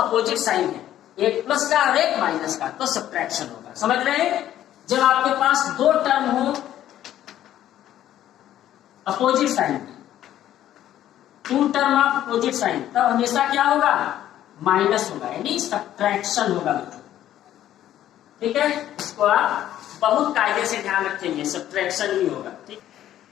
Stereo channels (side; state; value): right; quieter; 12.2 dB